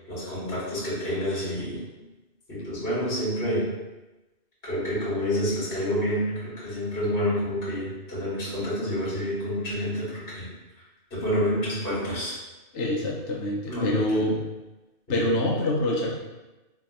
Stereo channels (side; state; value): right; late; 2.6 ms